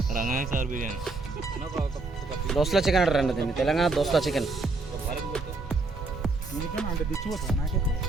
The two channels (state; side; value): quieter; left; 3.5 dB